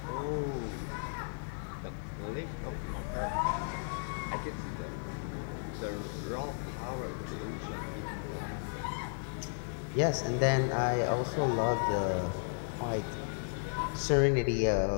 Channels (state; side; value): silent; right; 55 dB below the other